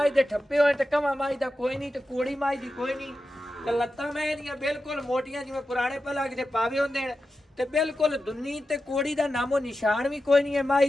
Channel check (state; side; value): normal; both; correlation 0.91